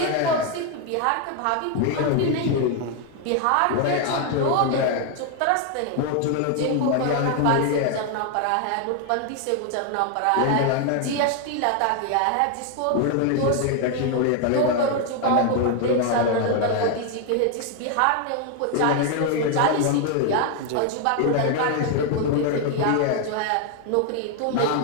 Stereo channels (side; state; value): both; different; correlation 0.01